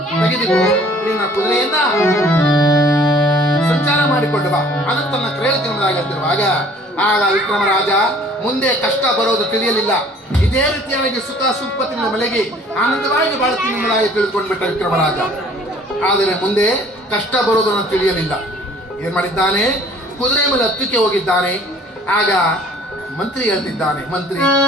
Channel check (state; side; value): normal; both; correlation 0.53